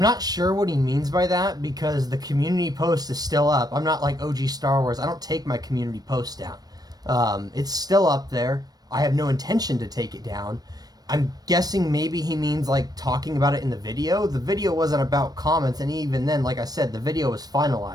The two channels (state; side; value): late; left; 0.19 ms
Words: sure what he means by that because the community post is still up. I'm not like OG Star Wars. I don't take my community post down. It's still up there. I have no intention to take it down. I'm guessing maybe he means like talking about it in the video. The video wasn't about comments, and even then, like I said, the video was